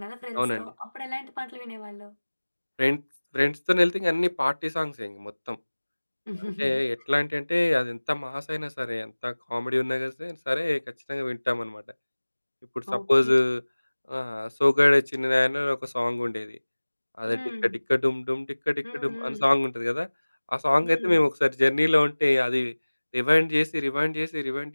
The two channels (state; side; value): inverted; both; correlation -1.00